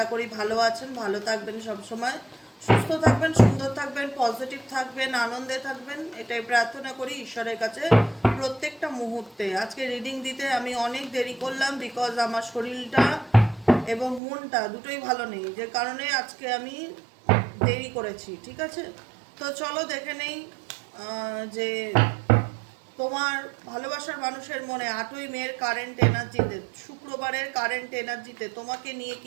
করি ভালো আছেন, ভালো থাকবেন, সবসময় সুস্থ থাকবেন, সুন্দর থাকবেন, পজিটিভ থাকবেন, আনন্দে থাকবেন, এটাই প্রার্থনা করি ঈশ্বরের কাছে প্রত্যেকটা মুহূর্তে। আজকে রিডিং দিতে আমি অনেক দেরি করলাম, বিকজ আমার শরীরটা এবং মনটা দুটোই ভালো নেই, যে কারণে আজকে আমি দেরি করেছি। ঠিক আছে, তো চলো দেখে নেই যে তোমার ভালোবাসার মানুষের মনে 8ই মের কারেন্ট এনার্জিতে, শুক্রবারের কারেন্ট এনার্জিতে তোমাকে নিয়ে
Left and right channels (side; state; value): left; drops out; at 14.2 s